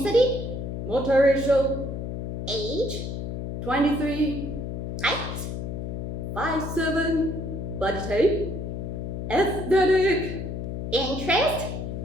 multiracial, age, 23, height, 5'7", body type, aesthetic, interest,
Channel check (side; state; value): left; noise; hum, 5 dB below the sound